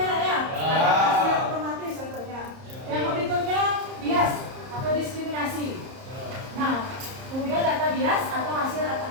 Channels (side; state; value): left; late; 30 ms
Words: ya. Mesin otomatis contohnya. Yang berikutnya bias atau diskriminasi. Nah, kemudian data bias atau hasil data